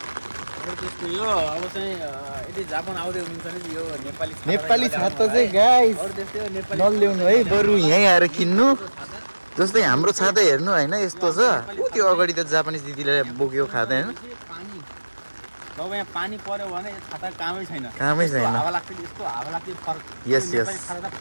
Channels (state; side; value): inverted; both; correlation -1.00